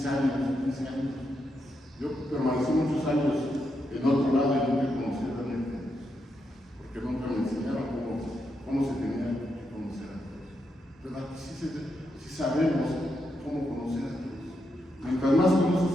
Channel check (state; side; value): normal; both; correlation 0.83